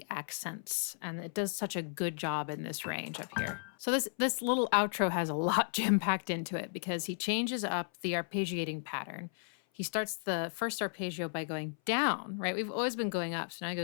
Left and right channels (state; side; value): silent; right; 55 dB below the other